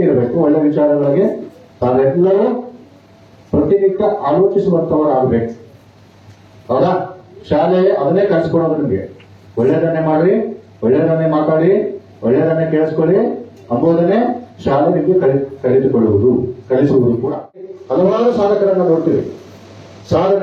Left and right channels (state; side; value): identical; both; correlation 1.00